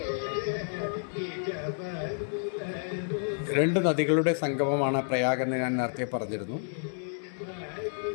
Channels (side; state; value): right; silent; 58 dB below the other